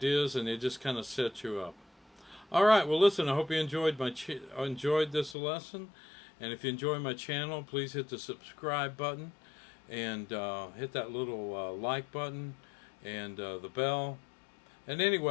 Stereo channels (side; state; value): right; drops out; at 5.4 s